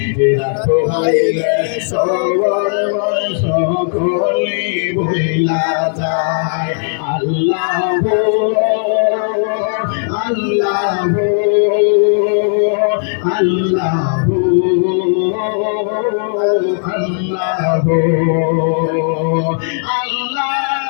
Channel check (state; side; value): silent; right; digital silence